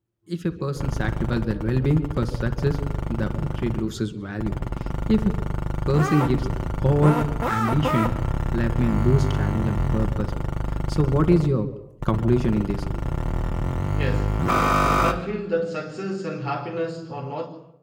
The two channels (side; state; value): both; identical; correlation 1.00